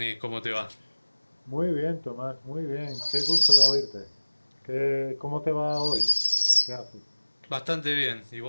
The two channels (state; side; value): inverted; both; correlation -1.00